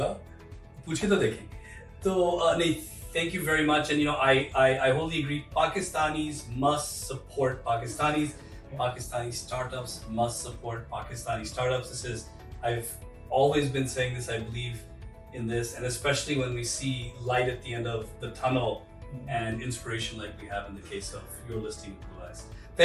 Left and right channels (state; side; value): identical; both; correlation 1.00